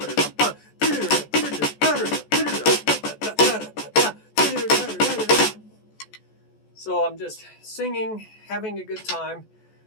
So I'm just singing, having a good time,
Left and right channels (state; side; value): late; right; 14 ms